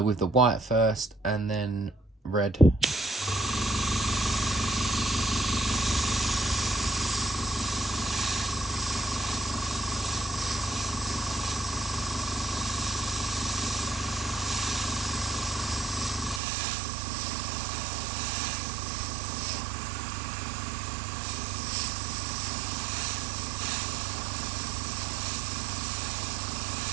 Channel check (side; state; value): left; drops out; at 16.4 s